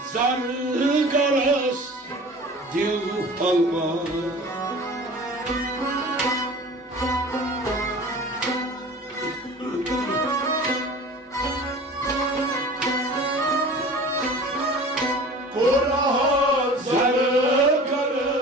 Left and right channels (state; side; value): normal; both; correlation 0.41